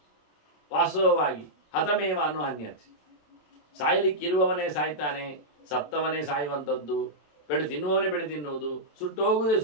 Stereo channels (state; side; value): late; right; 27 ms